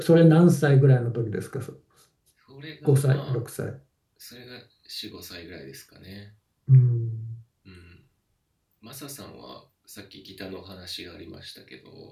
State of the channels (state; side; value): identical; both; correlation 1.00